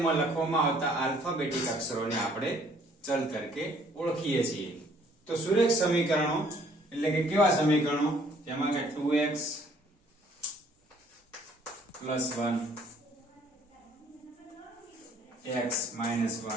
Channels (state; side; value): normal; both; correlation 0.61